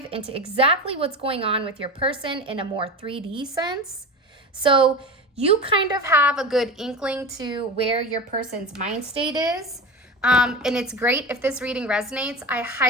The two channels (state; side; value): normal; both; correlation 0.27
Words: into exactly what's going on with your person in a more 3D sense. So you kind of have a good inkling to where your person's mind state is. And it's great if this reading resonates. I